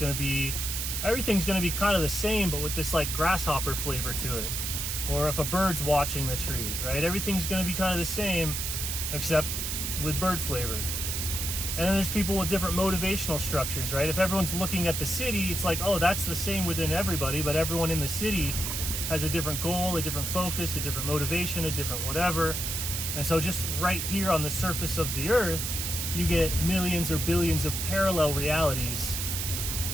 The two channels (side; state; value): right; noise; hiss, 2 dB below the sound